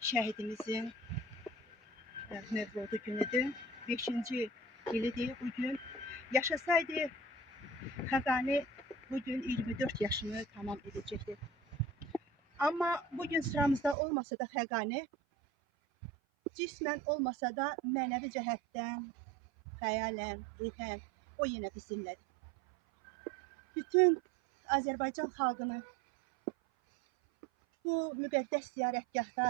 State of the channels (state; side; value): drops out; left; at 14.0 s